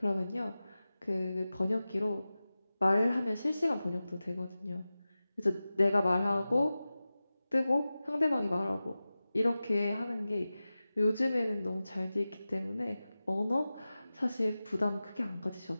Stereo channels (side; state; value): both; inverted; correlation -0.96